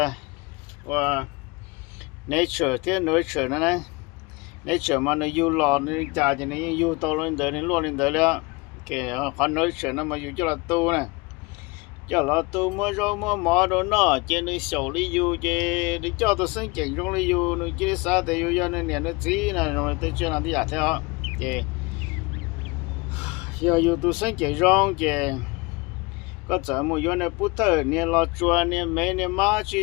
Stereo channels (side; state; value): right; quieter; 26.1 dB